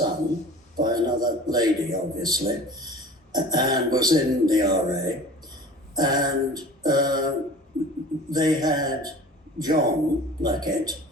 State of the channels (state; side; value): normal; both; correlation 0.42